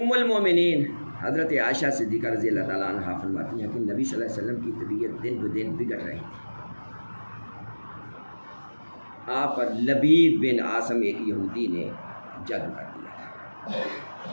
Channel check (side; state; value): both; inverted; correlation -1.00